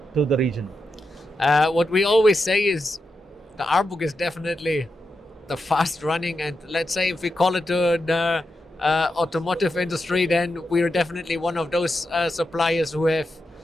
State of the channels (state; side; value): normal; both; correlation 0.87